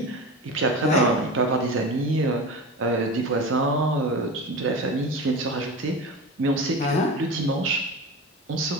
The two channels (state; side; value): normal; both; correlation 0.29